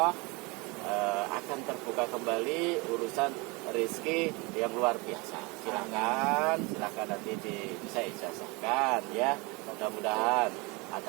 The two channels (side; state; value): left; quieter; 26.8 dB